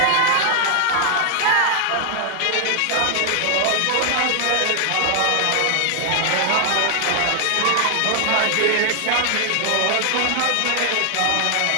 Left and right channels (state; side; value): different; both; correlation 0.00